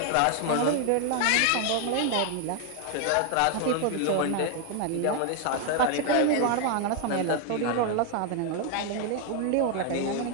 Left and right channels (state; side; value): different; both; correlation 0.01